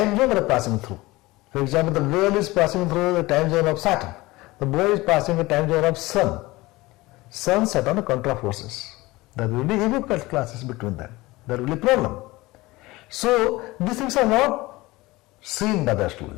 zone they are passing through. For example, the girl is passing through the time zone of Saturn, the boy is passing the time zone of Sun. Sun, Saturn are contra forces. There will be ego classes between them. There will be problem. So these things are not seen by the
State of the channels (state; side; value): quieter; right; 20.5 dB